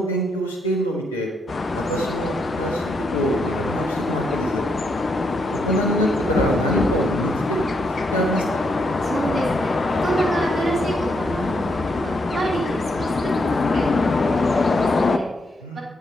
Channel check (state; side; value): normal; both; correlation 0.77